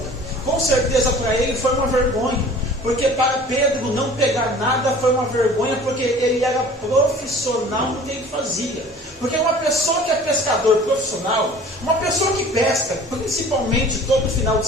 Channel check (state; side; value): normal; both; correlation 0.46